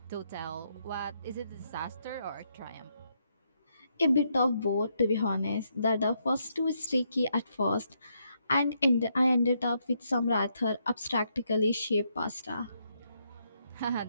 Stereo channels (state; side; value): inverted; both; correlation -0.77